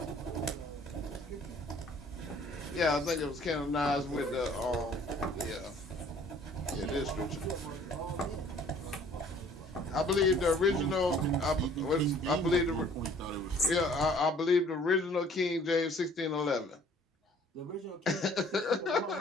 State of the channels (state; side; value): normal; both; correlation 0.55